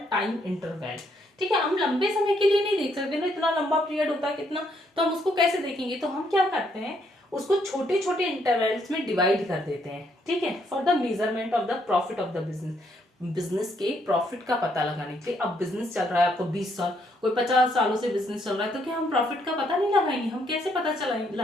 time interval, ठीक है। हम लंबे समय के लिए नहीं देख सकते ना, इतना लंबा पीरियड होता है कितना, तो हम उसको कैसे देखेंगे? तो हम क्या करते हैं, उसको छोटे छोटे इंटरवल्स में डिवाइड कर देते हैं, ठीक है, for the measurement of the profit of the business. Business के प्रॉफिट का पता लगाने के लिए। अब बिजनेस चल रहा है आपको 20 साल, कोई 50 सालों से बिजनेस चल रहा है, तो क्या हम प्रॉफिट का पता नहीं लगाएंगे? हम कैसे पता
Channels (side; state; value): both; normal; correlation 0.72